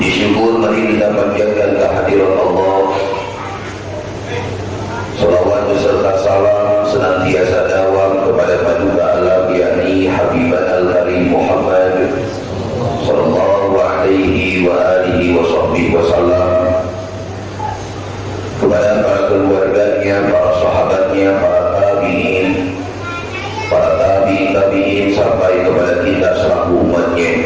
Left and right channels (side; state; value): both; identical; correlation 1.00